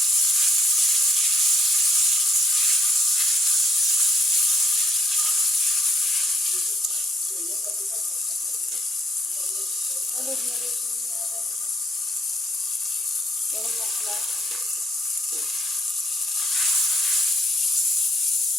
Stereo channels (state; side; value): normal; both; correlation 0.73